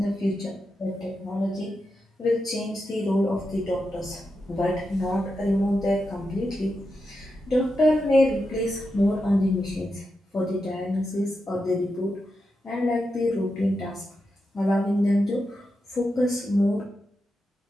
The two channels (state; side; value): normal; both; correlation 0.87